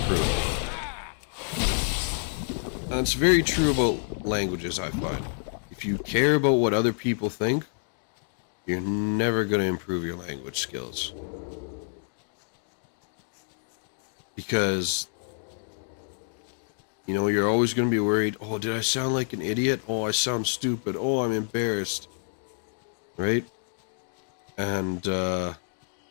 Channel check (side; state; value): right; silent; digital silence